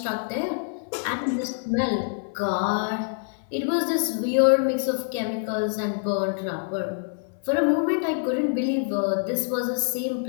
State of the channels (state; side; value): silent; right; 61 dB below the other